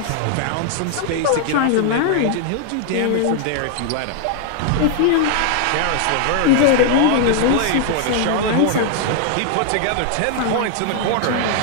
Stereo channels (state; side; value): different; both; correlation 0.00